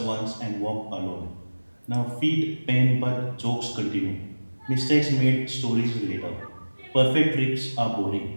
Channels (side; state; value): both; inverted; correlation -1.00